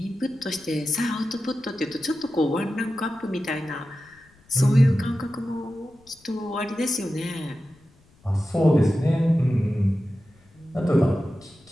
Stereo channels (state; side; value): noise; left; rumble, 30 dB below the sound